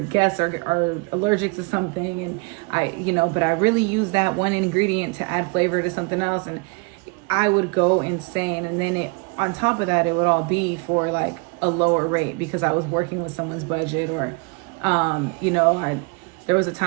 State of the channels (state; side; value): quieter; left; 31.8 dB